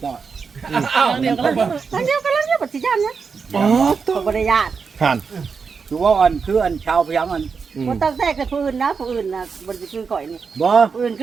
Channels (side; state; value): left; quieter; 5.5 dB